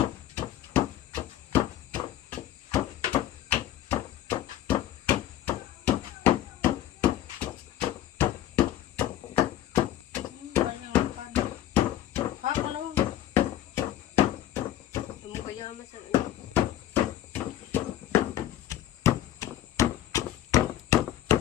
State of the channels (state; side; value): quieter; right; 12.7 dB